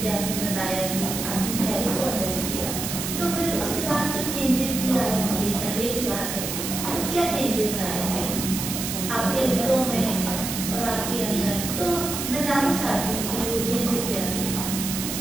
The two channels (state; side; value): noise; right; hiss, 4 dB below the sound